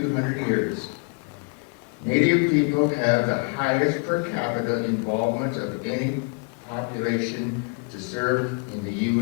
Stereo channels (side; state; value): right; quieter; 34.6 dB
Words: years. Native people have the highest per capita involvement of any population to serve in the